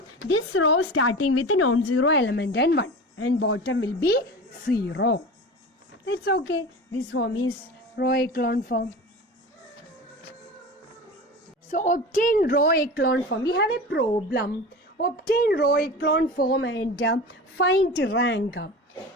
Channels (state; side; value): normal; both; correlation 0.32